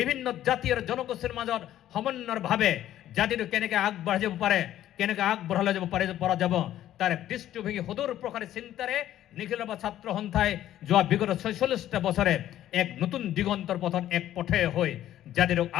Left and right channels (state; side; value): quieter; right; 12.5 dB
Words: জাতি আৰু জনগোষ্ঠীৰ মাজত সমন্বয়ভাৱে জাতিটো কেনেকৈ আগবাঢ়ি যাব পাৰে কেনেকৈ আগবঢ়ালৈ যাব পৰা যাব তাৰ এক দৃষ্টিভংগী সুদূৰ প্ৰসাৰী চিন্তাৰে নিখিল ছাত্ৰ সন্থাই যোৱা বিগত ৪৬টা বছৰে এক নতুন দিগন্তৰ পথত এক পথে হৈ জাতিটোক